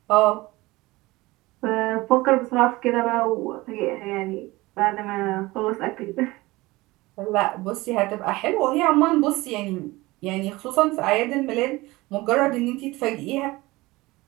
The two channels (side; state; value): left; quieter; 20.6 dB